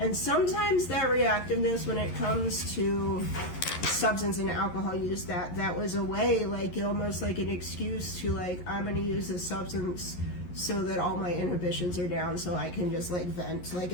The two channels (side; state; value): right; late; 11 ms